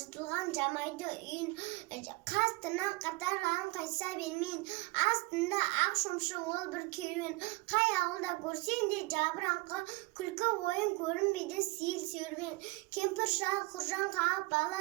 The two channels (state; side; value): quieter; left; 24.0 dB